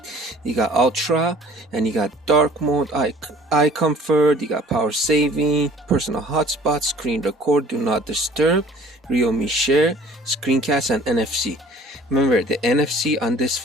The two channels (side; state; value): both; normal; correlation 0.50